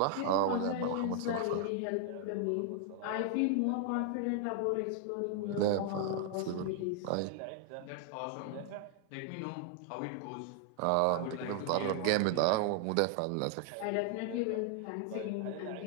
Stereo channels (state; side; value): different; both; correlation 0.00